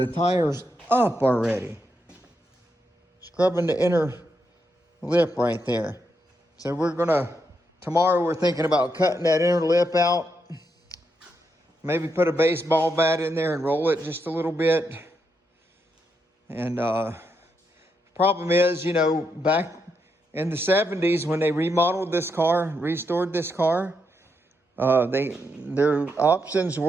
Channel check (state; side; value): normal; both; correlation 0.81